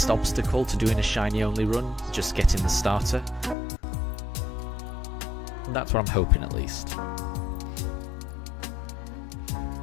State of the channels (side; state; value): right; drops out; at 3.6 s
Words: obstacle to doing a shiny only run, just getting the starter. And that's what I'm hoping, at least.